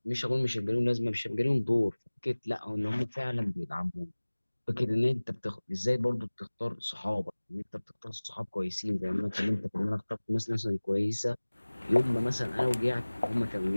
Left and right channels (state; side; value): inverted; both; correlation -1.00